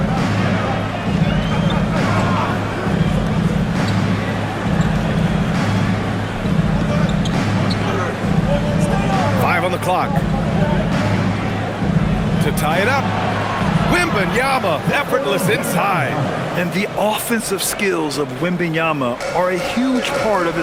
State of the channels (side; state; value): both; identical; correlation 1.00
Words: On the clock to tie it up. Wembanyama effortless inside. And the offensive skills of Wembanyama are a huge part of